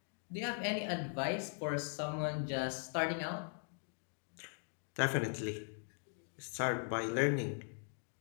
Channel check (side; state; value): right; silent; 51 dB below the other